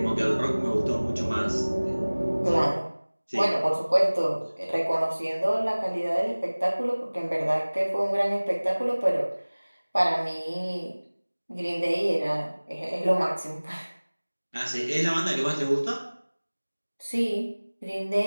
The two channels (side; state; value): both; inverted; correlation -1.00